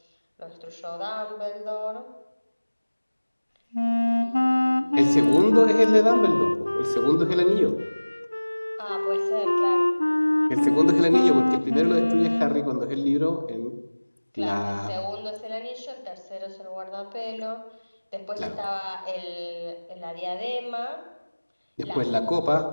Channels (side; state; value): both; inverted; correlation -1.00